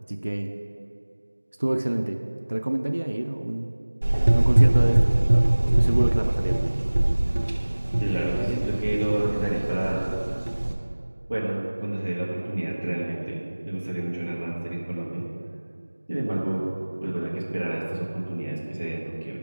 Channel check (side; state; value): both; inverted; correlation -1.00